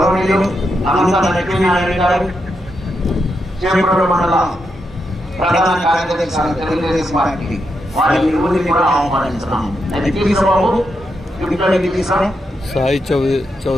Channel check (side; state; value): both; normal; correlation 0.84